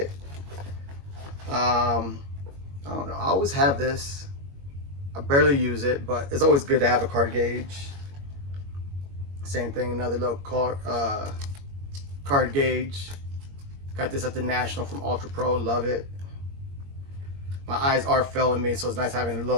I don't know, I always have this. I barely use it, but it's always good to have a card gauge. Same thing, another little card gauge. Got this at the National from Ultra Pro, love it. My eyes are failing me, so it's nice having a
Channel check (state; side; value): late; left; 21 ms